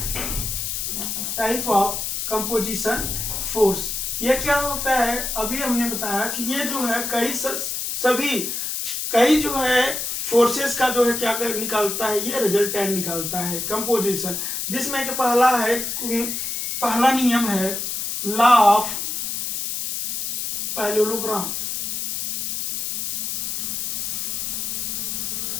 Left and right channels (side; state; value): left; noise; hiss, 3 dB below the sound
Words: Type of composition force ये क्या होता है, अभी हमने बताया कि ये जो है कई जो है फोर्सेस का जो है क्या निकालता है, ये रिजल्टेंट निकालता है कंपोजिशन, जिसमें कि पहला नियम है law of parallelogram.